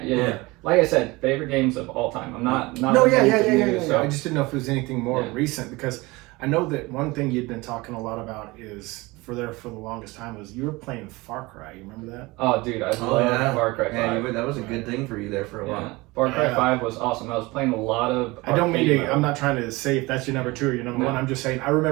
Like I said, favorite games of all time. I'm not. No, yeah. So I just didn't know if it was anything more recent, because I know that one thing you'd been talking a lot about is for the longest time was you were playing Far Cry. You remember that? Oh, dude, I love Far Cry 5. Yeah, that was a good thing for you there for a while. Far Cry 5 was awesome. I was playing a lot of. I'm not trying to say if that's your number 2 or your number 1. I'm just saying I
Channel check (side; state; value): left; quieter; 22.7 dB